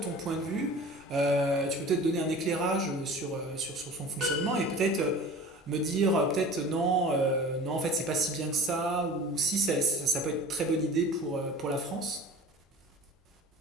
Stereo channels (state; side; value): normal; both; correlation 0.41